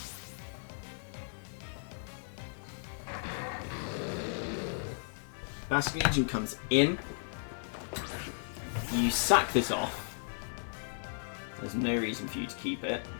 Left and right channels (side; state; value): right; silent; digital silence